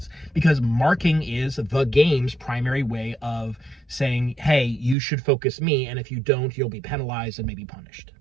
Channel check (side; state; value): left; drops out; at 5.0 s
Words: because marking is the game's primary way of saying, hey, you should focus me, and if you don't, you'll be penalized and maybe punished.